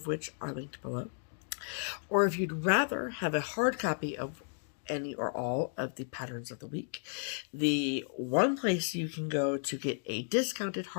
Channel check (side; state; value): right; silent; digital silence